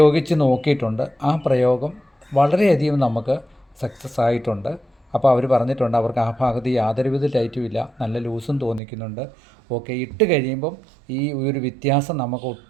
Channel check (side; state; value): left; drops out; at 8.8 s